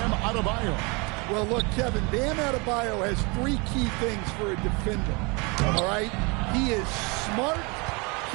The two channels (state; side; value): quieter; left; 29.2 dB